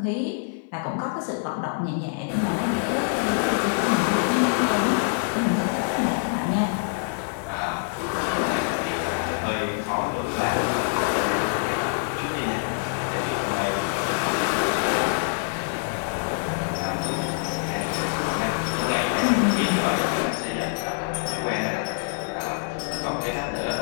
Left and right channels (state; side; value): silent; right; 56 dB below the other